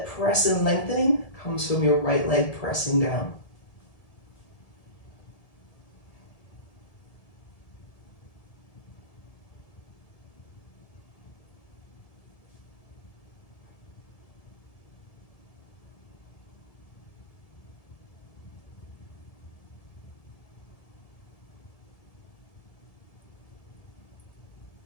press and lengthening comes from your right leg pressing down.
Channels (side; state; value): right; late; 1.7 ms